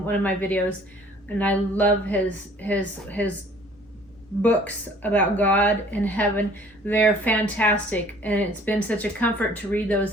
one of my videos. And I love his books about God and heaven. They're fantastic, and it's been such a comfort to read those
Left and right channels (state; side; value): normal; both; correlation 0.54